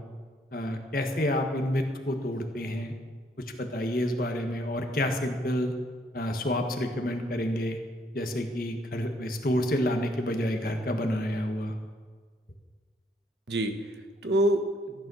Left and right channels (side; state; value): both; normal; correlation 0.69